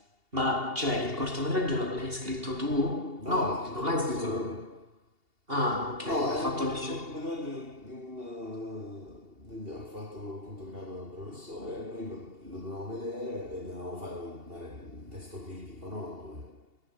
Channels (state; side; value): late; left; 2.8 ms